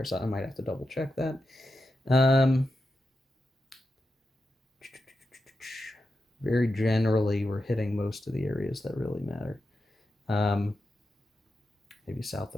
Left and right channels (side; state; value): both; normal; correlation 0.89